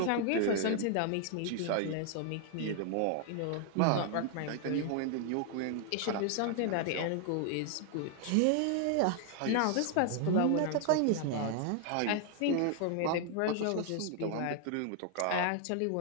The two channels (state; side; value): different; both; correlation 0.00